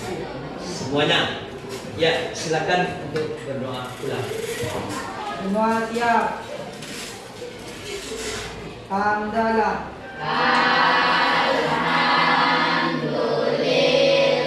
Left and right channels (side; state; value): both; identical; correlation 1.00